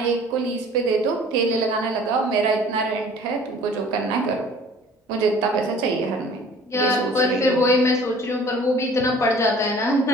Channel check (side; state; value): both; normal; correlation 0.50